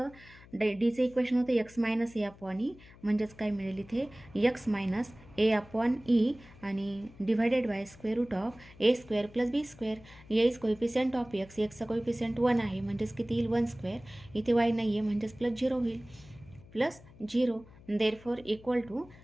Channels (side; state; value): left; noise; hum, 22 dB below the sound